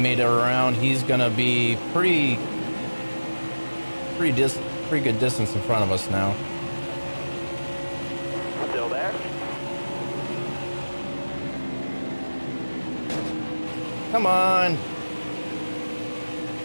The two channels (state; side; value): inverted; both; correlation -1.00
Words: it around. He's gonna be pretty good distance in front of us now. Still there. Come on.